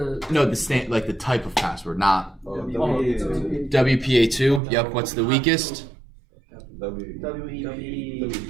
No, like the type of password, not Oh, WPA2. WPA2. Yep. What's the weakest?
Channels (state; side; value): drops out; left; at 4.6 s